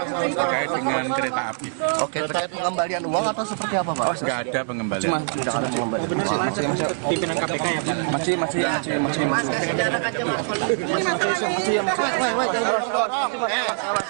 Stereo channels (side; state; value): left; silent; 63 dB below the other